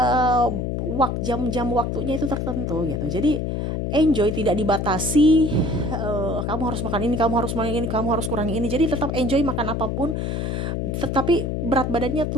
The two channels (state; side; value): noise; left; hum, 1 dB below the sound